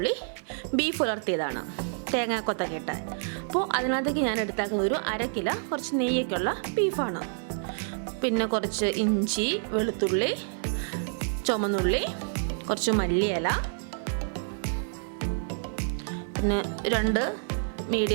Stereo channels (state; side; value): silent; left; digital silence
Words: ബീഫ് ഉലർത്തിയതാണ്, തേങ്ങാക്കൊത്തൊക്കെ ഇട്ട്. അപ്പോൾ അതിനകത്തേക്ക് ഞാൻ എടുത്താക്കുന്ന ഒരു 1/2 കിലോ കുറച്ച് നെയ്യൊക്കെയുള്ള ബീഫാണ്. പിന്നെ കുറച്ച് ഇഞ്ചി, വെളുത്തുള്ളി, ചുമന്നുള്ളി, കുറച്ച് മല്ലിയില, പിന്നെ 2